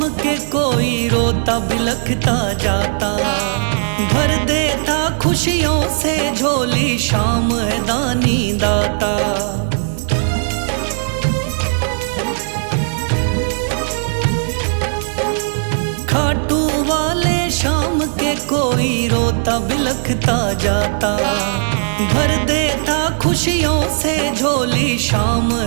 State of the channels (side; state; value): left; silent; digital silence